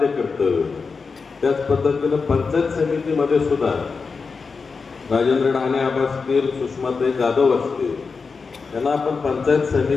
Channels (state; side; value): quieter; right; 4.8 dB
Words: कर्तव्य. त्याच पद्धतीनं पंचायत समितीमध्ये सुद्धा राजेंद्र ढाणे असतील, सुषमाताई जाधव असतील, त्यांना आपण पंचायत